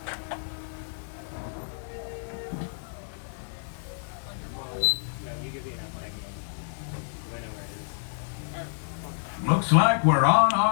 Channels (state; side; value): silent; right; digital silence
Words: Looks like we're on